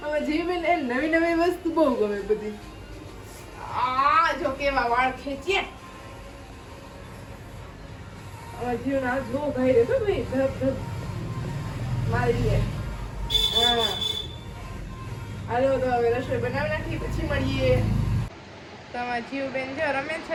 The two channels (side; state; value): both; identical; correlation 1.00